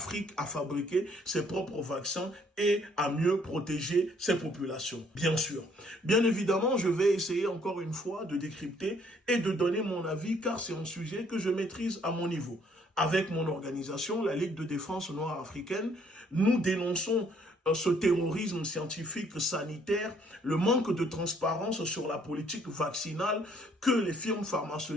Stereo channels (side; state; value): both; normal; correlation 0.64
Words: à fabriquer ses propres vaccins et à mieux protéger ses populations. Bien sûr. Bien évidemment, je vais essayer encore une fois de décrypter et de donner mon avis car c'est un sujet que je maîtrise à mon niveau. Avec mon organisation, la Ligue de défense noire africaine, nous dénonçons ce terrorisme scientifique sanitaire, le manque de transparence sur la politique vaccinale que les firmes